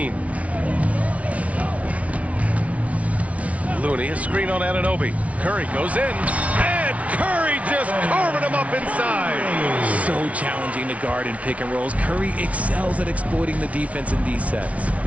Looney, a screen on Anunoby. Curry goes in, and Curry just carving him up inside. So challenging to guard in pick and rolls. Curry excels at exploiting the defense in these sets.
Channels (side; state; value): left; late; 0.066 ms